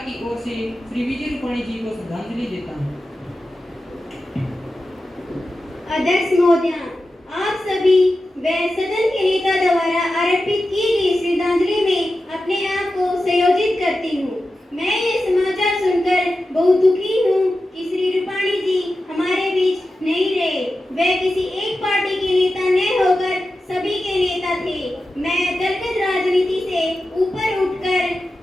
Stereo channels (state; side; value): normal; both; correlation 0.92